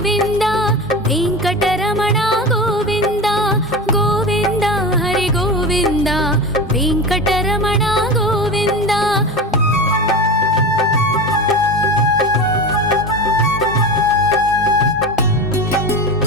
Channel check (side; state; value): both; normal; correlation 0.26